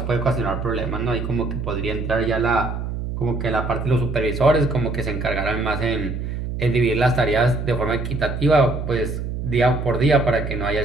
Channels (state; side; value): noise; right; hum, 4 dB below the sound